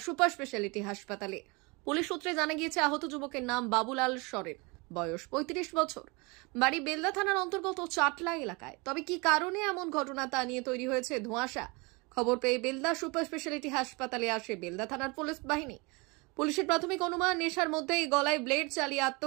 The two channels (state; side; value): quieter; left; 27.7 dB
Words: সুপার স্পেশালিটি হাসপাতালে। পুলিশ সূত্রে জানা গিয়েছে আহত যুবকের নাম বাবুলাল সরেন, বয়স 35 বছর, বাড়ি বেলদা থানার অন্তর্গত চাটলা এলাকায়। তবে কি কারণে এমন ঘটনা তা নিয়ে তৈরি হয়েছে ধোঁয়াশা। খবর পেয়ে বেলদা সুপার স্পেশালিটি হাসপাতালে আসে বেলদা থানার পুলিশ বাহিনী। পুলিশের প্রাথমিক অনুমান নেশার মধ্যেই গলায় ব্লেড চালিয়ে